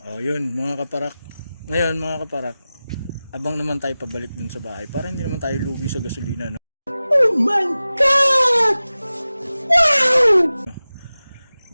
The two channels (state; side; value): inverted; both; correlation -0.96